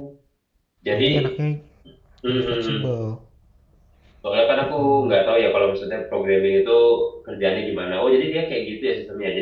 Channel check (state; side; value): identical; both; correlation 1.00